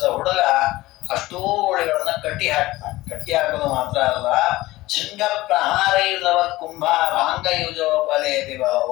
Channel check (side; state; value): right; quieter; 18.3 dB